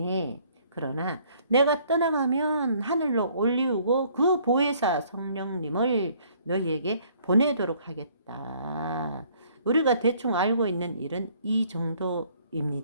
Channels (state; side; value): inverted; both; correlation -0.61